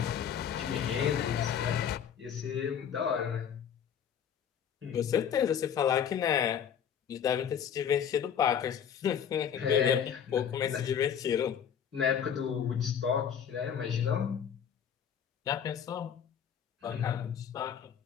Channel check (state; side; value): quieter; right; 8.3 dB